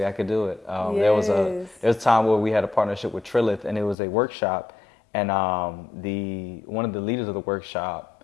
I could do it. There was a time where we had a partnership with Trilith, and it was a workshop, and one of the leaders of the workshop,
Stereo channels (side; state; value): right; drops out; at 4.0 s